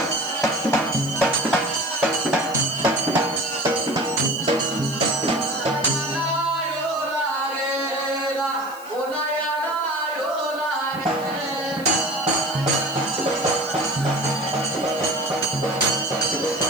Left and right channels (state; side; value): noise; left; hiss, 19 dB below the sound